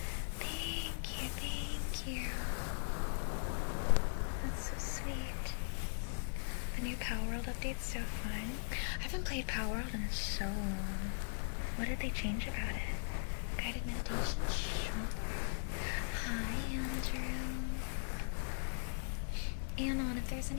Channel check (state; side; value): silent; right; 52 dB below the other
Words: Thank you. That's so sweet. The new Power World update's so fun. I haven't played Power World in so long. What did they change about it? Guided meditation? Sure. Hi, Andrew. Anon, if there's